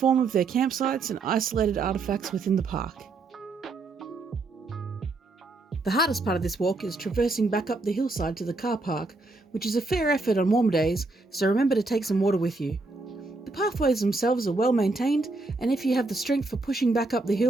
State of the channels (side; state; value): left; quieter; 3.4 dB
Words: of their campsites and isolated artefacts within the park. The hardest part of this walk is traversing back up the hillside to the car park, which is a fair effort on warmer days, so remember to take some water with you. The pathways themselves are well maintained, and if you have the strength for pushing back up the